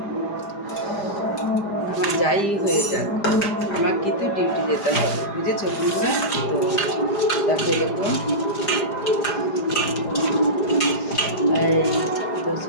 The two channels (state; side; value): late; right; 4.9 ms